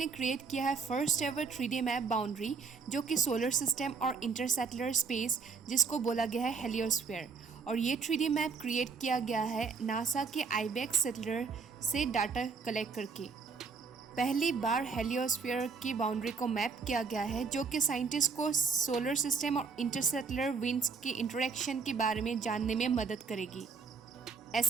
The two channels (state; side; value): quieter; left; 5.1 dB